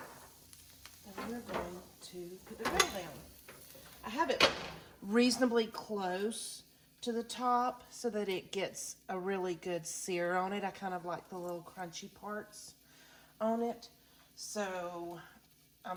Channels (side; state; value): both; identical; correlation 1.00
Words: we're going to put the grill down. I have it reasonably close to the top so that it gets a really good sear on it. I kind of like the little crunchy parts on it, so